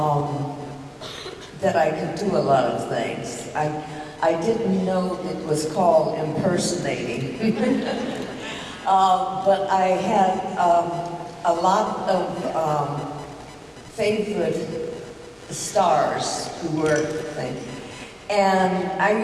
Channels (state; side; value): identical; both; correlation 1.00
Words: that I could do a lot of things. I didn't know it was called impersonating. But I had a lot of favorite stars who were things. And I